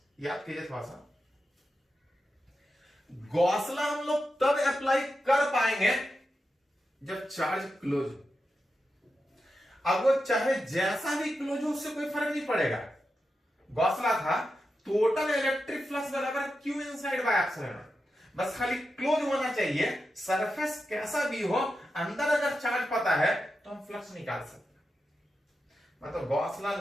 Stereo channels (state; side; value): normal; both; correlation 0.89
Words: याद कीजिए थोड़ा सा, गॉस लॉ हम लोग तब अप्लाई कर पाएंगे जब चार्ज क्लोज हो। अब वो चाहे जैसा भी क्लोज हो, उससे कोई फर्क नहीं पड़ेगा। गॉस लॉ था टोटल इलेक्ट्रिक फ्लक्स बराबर Q इनसाइड बाय एप्सिलॉन। बस खाली क्लोज होना चाहिए, सरफेस कैसा भी हो, अंदर अगर चार्ज पता है तो हम फ्लक्स निकाल सकते हैं। मतलब गॉस लॉ